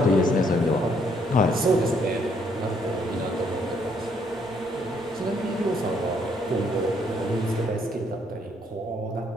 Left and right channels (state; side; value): normal; both; correlation 0.69